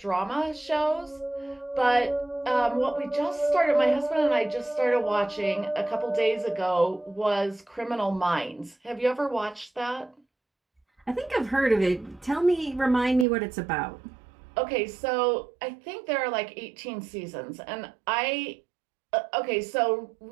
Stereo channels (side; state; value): left; drops out; at 13.2 s